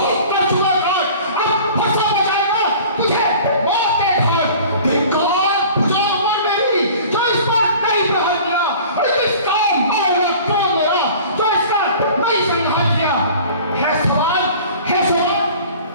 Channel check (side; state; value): both; inverted; correlation -0.44